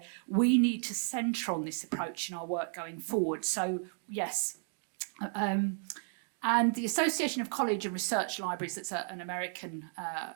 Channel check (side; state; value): left; silent; 55 dB below the other